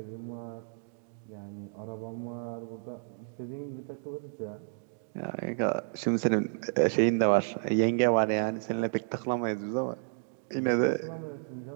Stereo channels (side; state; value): left; silent; digital silence